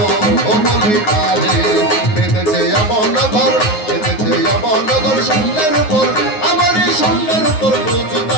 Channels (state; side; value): late; right; 9.5 ms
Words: বলি তারে বেঁধেছে এমন নগর বেঁধেছে এমন নগর শূন্যের উপর আমার এই শূন্যের উপর